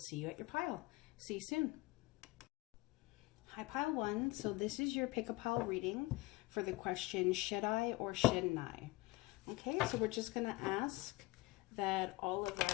you at your pile. See you soon. Hi, pile 1. So this is your pick a pile reading for the question, should I or shouldn't I? Okay, so we're just going to ask that all of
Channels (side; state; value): right; quieter; 21.3 dB